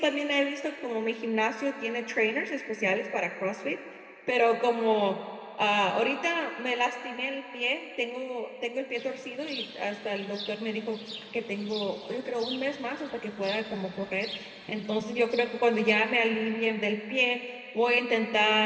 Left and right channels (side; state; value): both; identical; correlation 1.00